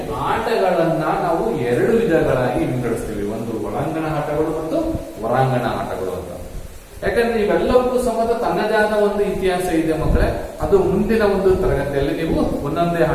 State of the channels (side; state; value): both; identical; correlation 1.00